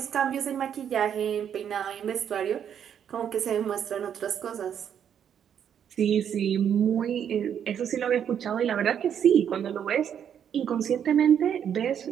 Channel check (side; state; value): left; quieter; 8.7 dB